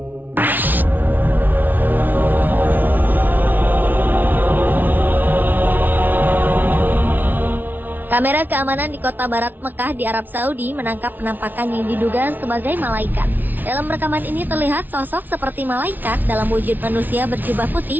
Kamera keamanan di kota barat Mekah di Arab Saudi menangkap penampakan yang diduga sebagai malaikat. Dalam rekaman ini terlihat sosok seperti malaikat dalam wujud manusia berjubah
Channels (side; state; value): left; late; 0.086 ms